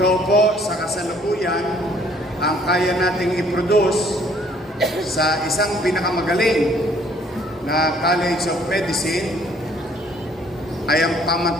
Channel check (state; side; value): normal; both; correlation 0.61